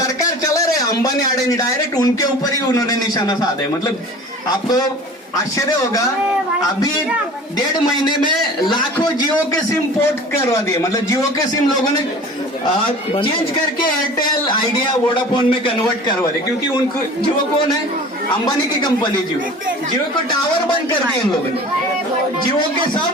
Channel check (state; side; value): normal; both; correlation 0.41